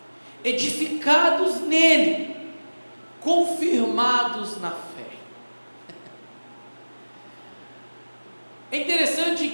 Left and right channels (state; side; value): inverted; both; correlation -1.00